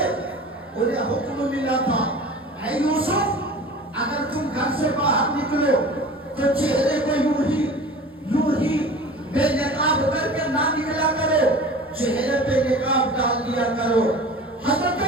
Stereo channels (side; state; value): both; normal; correlation 0.39